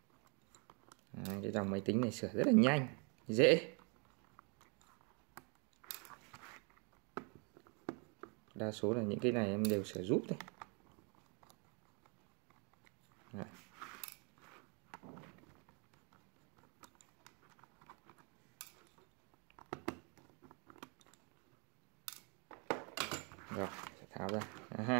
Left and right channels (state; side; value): quieter; left; 35.3 dB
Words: Cái dòng máy tính này sửa rất là nhanh, dễ. Đa số là những cái này em đều sửa giúp thôi. Rồi, sẽ tháo ra.